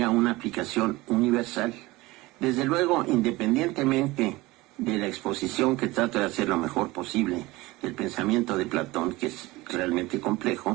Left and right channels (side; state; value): left; quieter; 20.6 dB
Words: una aplicación universal. Desde luego, independientemente de la exposición que trato de hacer lo mejor posible del pensamiento de Platón, que es realmente